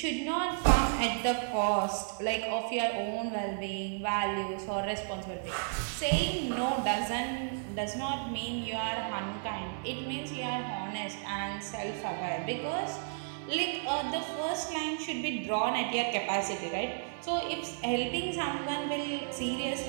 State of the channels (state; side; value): silent; left; 56 dB below the other